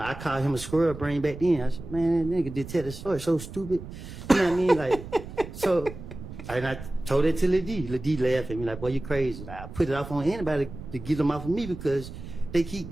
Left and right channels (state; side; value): noise; right; rumble, 12 dB below the sound